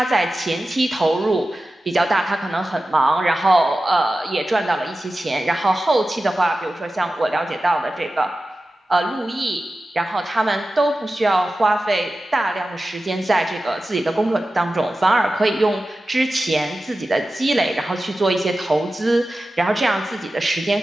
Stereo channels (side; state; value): both; normal; correlation 0.94